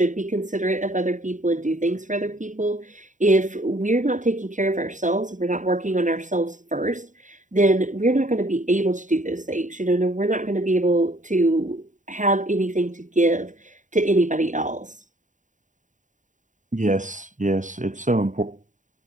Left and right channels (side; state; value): left; late; 0.36 ms